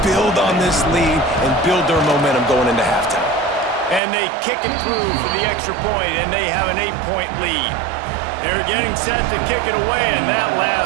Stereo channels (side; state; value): left; drops out; at 4.0 s